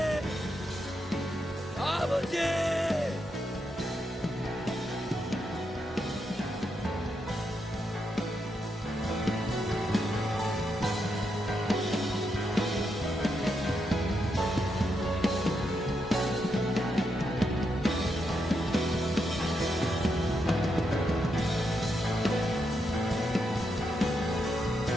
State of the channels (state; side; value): normal; both; correlation 0.82